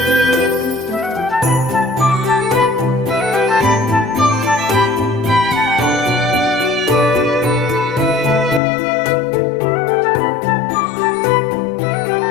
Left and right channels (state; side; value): drops out; right; at 8.6 s